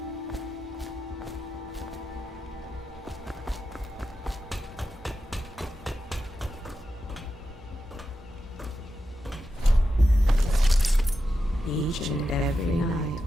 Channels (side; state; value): both; normal; correlation 0.89